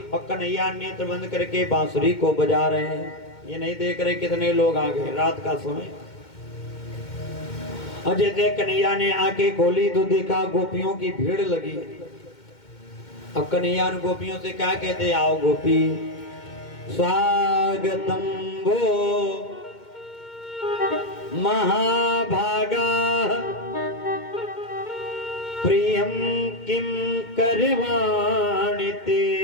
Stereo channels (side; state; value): right; late; 2.2 ms